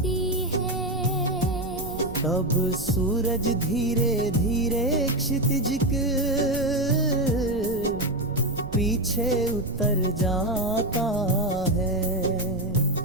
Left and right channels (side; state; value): right; noise; rumble, 12 dB below the sound